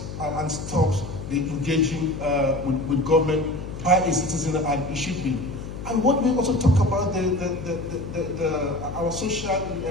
and stops the engaging with government by a citizen, and it should be. And what we also talk about our social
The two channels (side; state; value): left; noise; hum, 9 dB below the sound